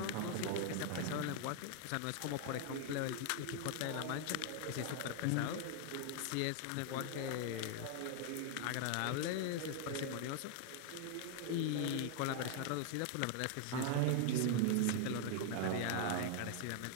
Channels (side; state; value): both; different; correlation 0.00